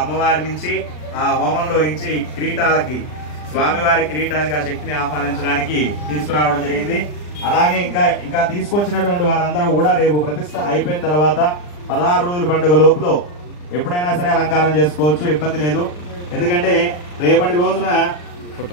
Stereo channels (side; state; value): right; late; 40 ms